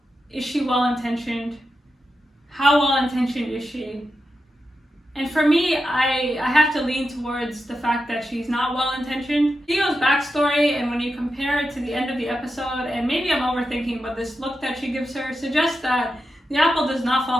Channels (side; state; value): both; normal; correlation 0.89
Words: Is she well-intentioned? How well-intentioned is she? And for me, I have to lean towards the fact that she's not well-intentioned. Theo's backstory, and when you compare it to the end of the episode, and maybe I'm overthinking, but this look that she gives her suggests that the apple does not